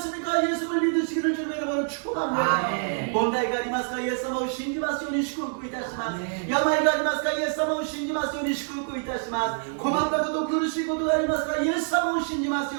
예수를 믿으시기를 주님의 이름으로 축복합니다. 아멘. 問題がありますかイエス様を信じますように祝福いたします。아멘. 病がありますかイエス様を信じますように祝福いたします。困ったこと苦しいことがありますかイエス様を信じます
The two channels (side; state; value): left; silent; 61 dB below the other